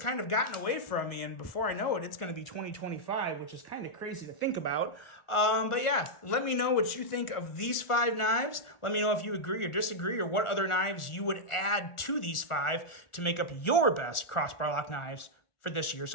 of gotten away from me, and before I know it, it's going to be 2025, which is kind of crazy to think about. But yeah, let me know what you think of these 5 knives. Let me know if you agree or disagree, or what other knives you would add to these 5 to make up your best crossbar lock knives for this year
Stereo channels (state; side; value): late; right; 1.4 ms